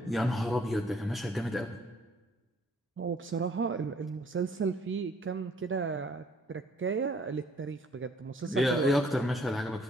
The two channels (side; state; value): both; normal; correlation 0.62